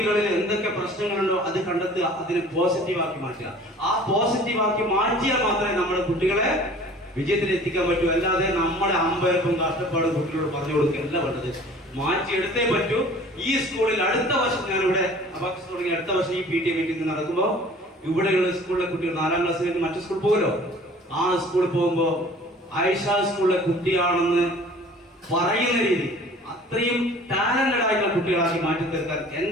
എന്തൊക്കെ പ്രശ്നങ്ങളുണ്ടോ അത് കണ്ടെത്തുക, അതിനെ പോസിറ്റീവാക്കി മാറ്റുക. ആ പോസിറ്റീവാക്കി മാറ്റിയാൽ മാത്രമേ നമ്മുടെ കുട്ടികളെ വിജയത്തിൽ എത്തിക്കാൻ പറ്റൂ. അല്ലാതെ നമ്മളെ അമ്പയർക്കും കഷ്ടപ്പാടും കുട്ടികളോട് പറഞ്ഞു കൊടുക്കുകയല്ല വേണ്ടത്. മാറ്റിയെടുത്തേ പറ്റൂ. ഈ സ്കൂളിൽ അടുത്ത വർഷം ഞാനിവിടെ അബാക്കസ് തുടങ്ങി അടുത്ത വർഷം ഈ PTA മീറ്റിംഗ് നടക്കുമ്പോൾ ഇവിടെയുള്ള സ്കൂളിലെ കുട്ടികൾ 4ാം ക്ലാസ് കഴിഞ്ഞ് മറ്റു സ്കൂളിൽ പോകുമല്ലോ. ആ സ്കൂളിൽ പോകുമ്പോ ആയിഷ സ്കൂളിലെ കുട്ടിയാണെന്ന് പറയുന്ന രീതി അത്രയും ടാലന്റഡ് ആയിട്ടുള്ള കുട്ടികളാക്കി മാറ്റി തീർക്കാൻ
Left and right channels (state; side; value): normal; both; correlation 0.48